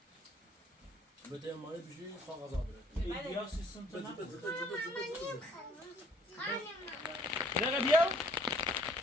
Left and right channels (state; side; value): normal; both; correlation 0.60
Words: بده مال بشی کاغذ آبره بیا سیستم تو نه بده بیا بیا